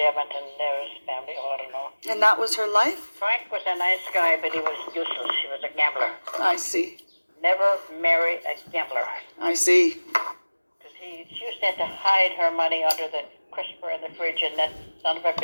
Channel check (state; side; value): inverted; both; correlation -1.00